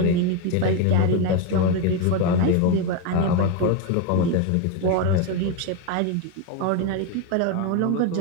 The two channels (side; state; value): both; different; correlation 0.02